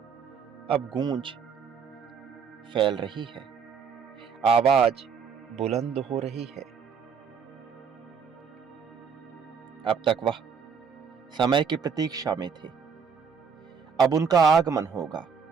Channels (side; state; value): left; quieter; 6.3 dB